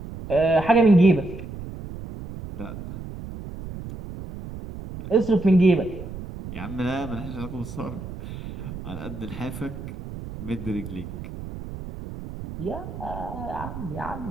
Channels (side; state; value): right; noise; rumble, 10 dB below the sound